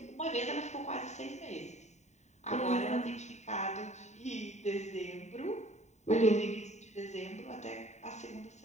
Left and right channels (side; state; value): right; late; 0.34 ms